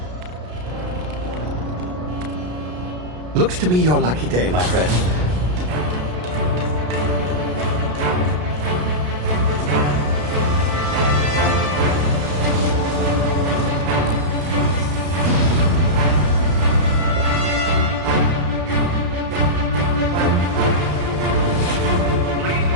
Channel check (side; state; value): left; late; 33 ms